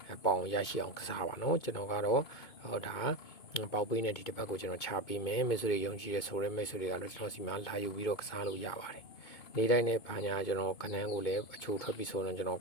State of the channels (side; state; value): right; late; 2.2 ms